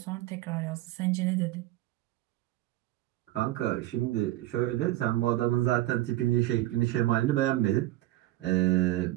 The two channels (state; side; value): quieter; left; 15.9 dB